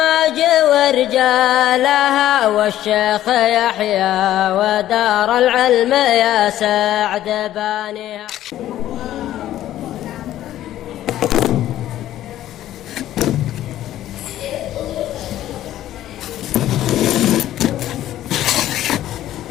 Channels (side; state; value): right; quieter; 13.0 dB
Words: ورجالها والشيخ يحيى ودار العلم يا سعد بانيها.